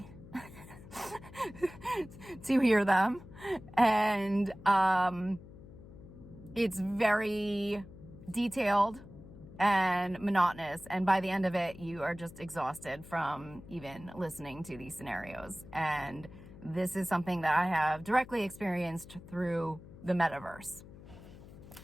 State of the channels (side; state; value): left; noise; hum, 18 dB below the sound